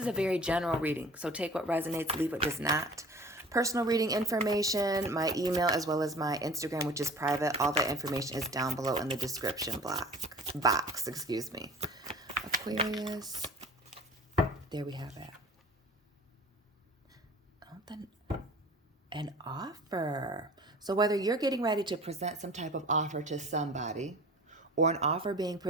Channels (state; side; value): normal; both; correlation 0.43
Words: a very general reading, so take what resonates, leave what does not. Personal reading information, my email, as well as my Instagram, which is private. All that information is down below in the description box. Excuse me. Aquarius. There we have it. An offer. So whether you're getting ready to present some type of offer to somebody or an offer being